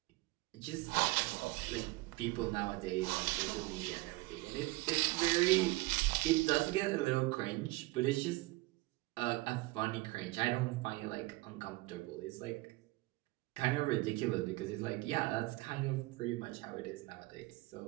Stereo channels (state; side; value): quieter; left; 21.0 dB